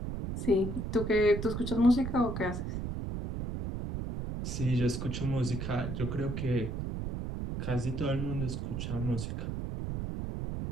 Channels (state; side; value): noise; right; rumble, 4 dB below the sound